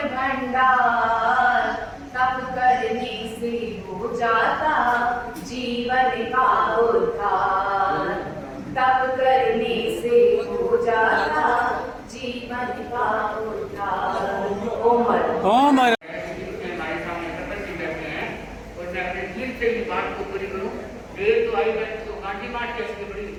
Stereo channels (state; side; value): identical; both; correlation 1.00